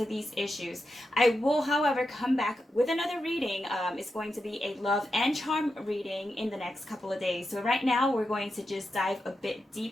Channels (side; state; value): both; normal; correlation 0.88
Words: these issues. I will, however, come back with another reading. It's going to be a love and charm reading in the next couple of days. So right now we're going to just dive a bit